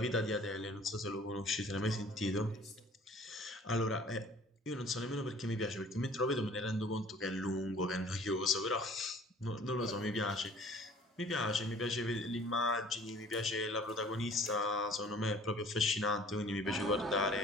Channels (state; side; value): normal; both; correlation 0.51